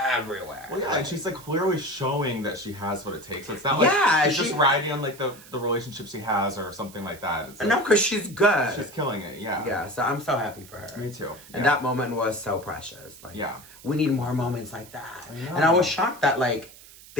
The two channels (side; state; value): right; noise; hiss, 20 dB below the sound